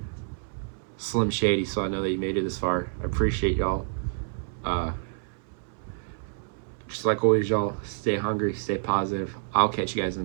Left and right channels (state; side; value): silent; left; 59 dB below the other